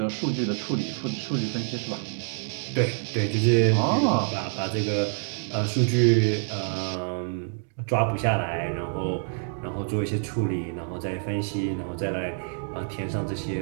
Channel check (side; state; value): left; silent; 60 dB below the other